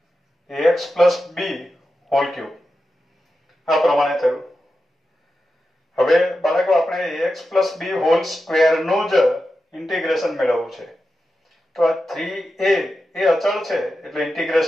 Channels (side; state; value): both; normal; correlation 0.90